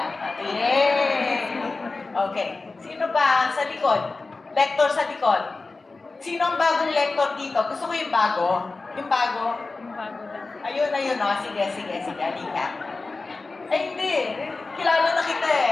Yay! Okay. Sino pa sa likod? Lector sa likod. Sino ang bagong lector dito? Gusto ko yung bago. Yung bago. Ayun, oh. Sige. Halika. Ay, hindi. Kilala na kita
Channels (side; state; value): right; quieter; 3.7 dB